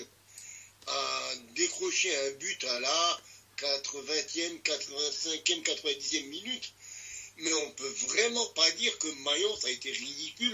à décrocher un but à la 80e, 85e, 90e minute. Mais on peut vraiment pas dire que Mayence a été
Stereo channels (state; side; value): identical; both; correlation 1.00